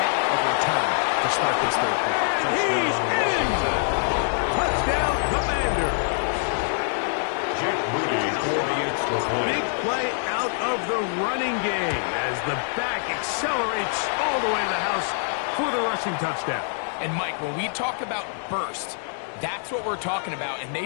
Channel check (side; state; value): right; silent; digital silence